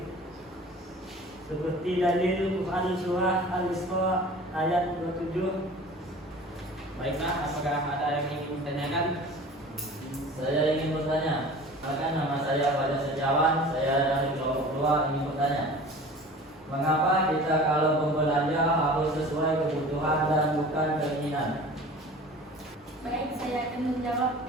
Seperti dalil Quran surah Al-Isra ayat 27. Baiklah, apakah ada yang ingin ditanyakan? Saya ingin bertanya. Bahkan nama saya pada sejawat, saya dari kelompok 2 ingin bertanya. Mengapa kita kalau berbelanja harus sesuai kebutuhan dan bukan keinginan? Baik, saya akan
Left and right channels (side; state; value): both; normal; correlation 0.42